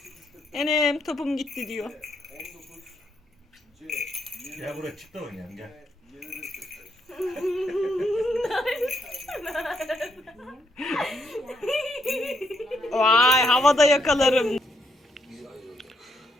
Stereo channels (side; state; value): both; normal; correlation 0.75